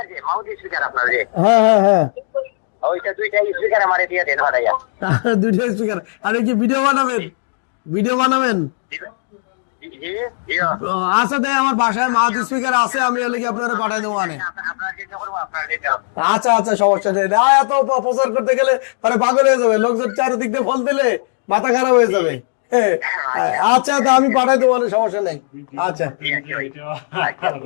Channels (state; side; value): silent; right; digital silence